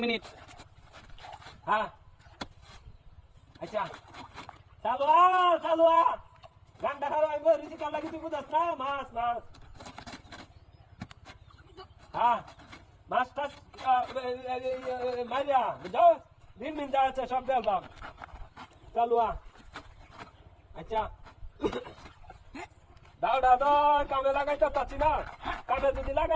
মিনিট হ্যাঁ আচ্ছা চালু গান্ডা খাওয়া আইব রিসি কাল লাগি তুই বুঝাস না মাছ হ্যাঁ মাছটা মারিয়া বুঝাও দিন যাচ্ছে সব দেখলাম চালু আচ্ছা দাও কামে লাগাইতে পারছি না কামে যদি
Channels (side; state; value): both; identical; correlation 1.00